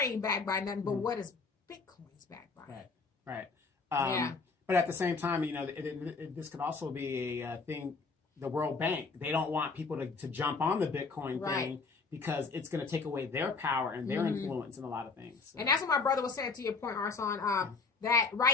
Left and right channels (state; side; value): quieter; right; 4.4 dB